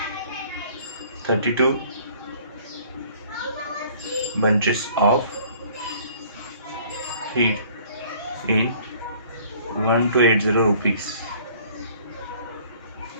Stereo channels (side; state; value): both; inverted; correlation -0.54